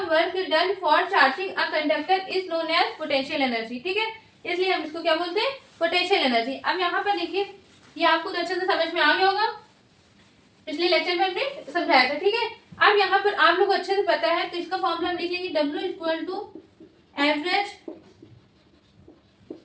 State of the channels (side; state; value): both; identical; correlation 1.00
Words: work done for charging a conductor is known as potential energy, ठीक है। इसलिए हम इसको क्या बोलते हैं? Potential energy. अब यहाँ पर देखिए, ये आपको तो अच्छे से समझ में आ गया होगा, पिछले लेक्चर में हमने समझाया था, ठीक है। अब यहाँ पर आप लोग को अच्छे से पता है, तो इसका फॉर्मूला हम लिख लेंगे, W = average